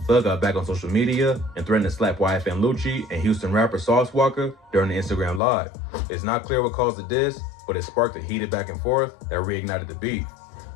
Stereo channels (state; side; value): drops out; right; at 5.4 s